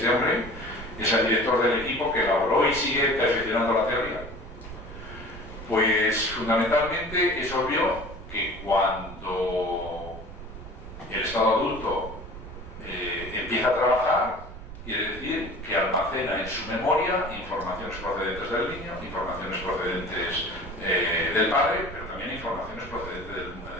hombre, es el director del equipo que elaboró y sigue perfeccionando la teoría. Pues fundamentalmente es obvio que cuando el estado adulto empieza a trabajar, quiere decir que almacena en su memoria informaciones procedentes del niño, informaciones procedentes del padre, pero también informaciones procedentes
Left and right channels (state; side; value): noise; right; rumble, 12 dB below the sound